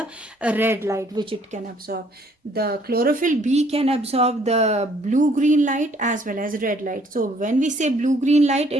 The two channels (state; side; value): normal; both; correlation 0.62